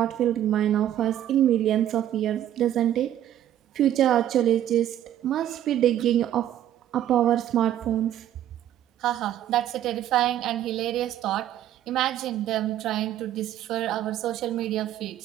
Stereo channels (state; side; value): quieter; left; 11.7 dB